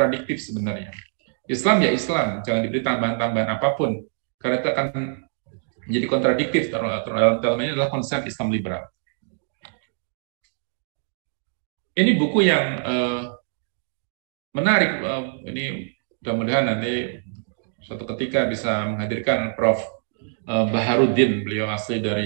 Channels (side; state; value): left; silent; digital silence